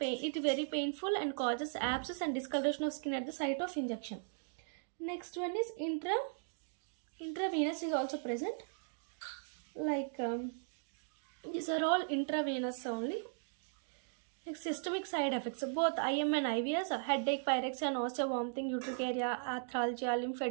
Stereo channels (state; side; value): silent; left; digital silence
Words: It is very painful and causes abscess and discoloration of skin at the site of injection. Next one is intravenous is also present. These are all intravenous only. Next, systemic side effects. Both IM and IVS, headache, pyrexia, nausea, vomiting, urticaria, arthralgia,